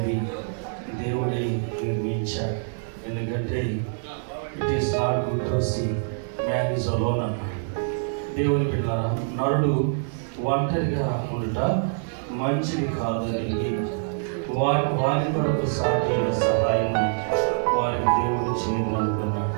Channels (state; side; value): silent; left; digital silence